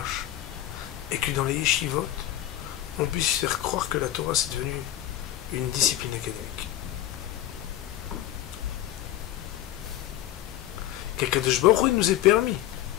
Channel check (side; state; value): right; quieter; 13.1 dB